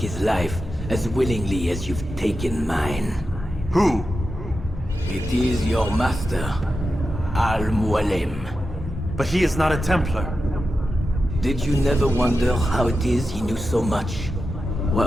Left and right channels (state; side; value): normal; both; correlation 0.90